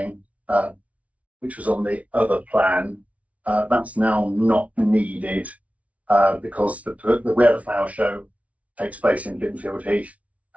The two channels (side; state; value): left; late; 0.066 ms